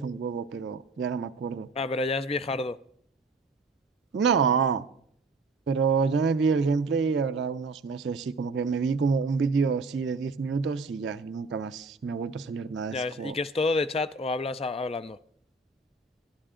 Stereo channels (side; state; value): left; quieter; 3.5 dB